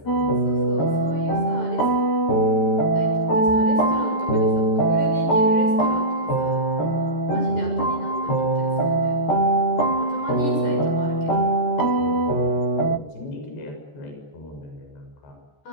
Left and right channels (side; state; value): right; late; 14 ms